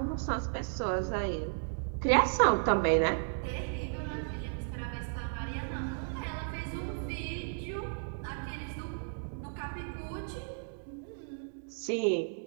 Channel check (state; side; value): silent; left; digital silence